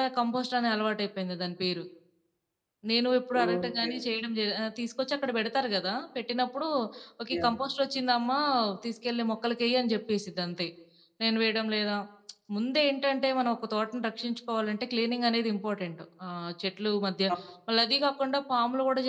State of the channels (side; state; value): both; identical; correlation 1.00